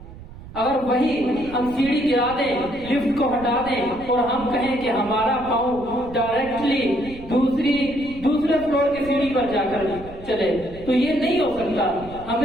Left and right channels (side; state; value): right; noise; rumble, 16 dB below the sound